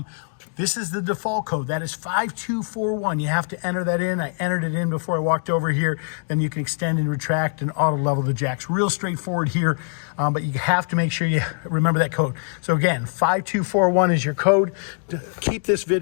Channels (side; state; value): right; silent; 63 dB below the other